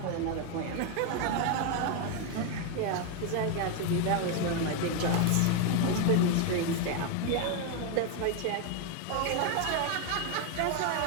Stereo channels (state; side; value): different; both; correlation 0.01